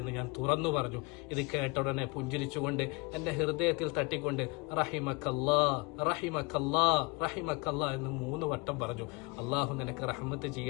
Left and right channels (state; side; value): quieter; right; 27.7 dB